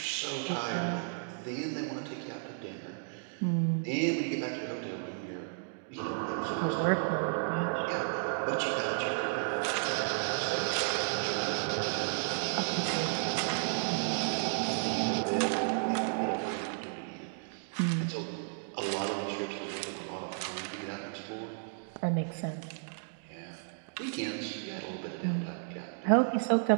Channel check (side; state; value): left; silent; digital silence